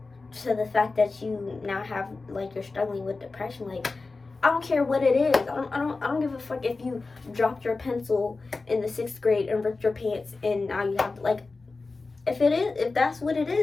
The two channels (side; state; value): right; quieter; 3.8 dB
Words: to the fact that you now have, like, you're struggling with depression. Like, I don't care what it is. I don't give a fuck if you dropped your pencil in the 6th grade and ripped your pants and now you have, like, if that's what it